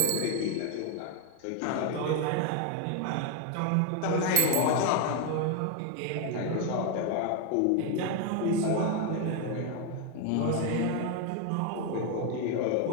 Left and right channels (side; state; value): both; different; correlation 0.01